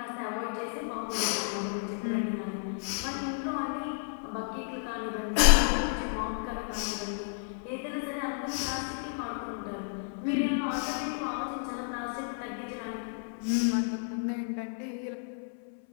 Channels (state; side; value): silent; right; 56 dB below the other